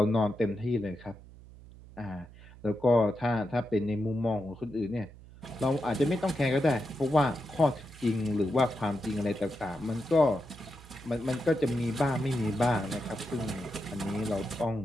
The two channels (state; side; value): noise; right; hum, 20 dB below the sound